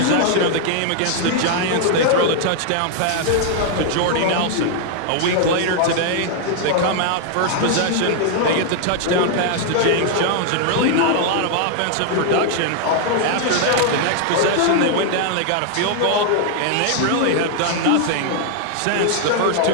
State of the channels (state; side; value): different; both; correlation 0.00